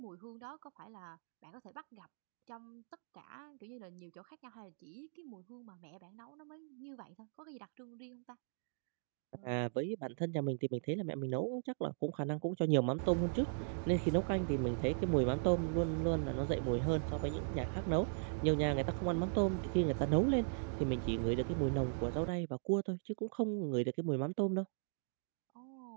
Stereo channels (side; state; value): left; silent; digital silence